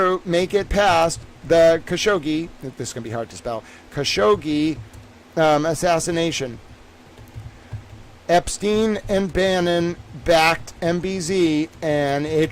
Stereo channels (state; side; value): identical; both; correlation 1.00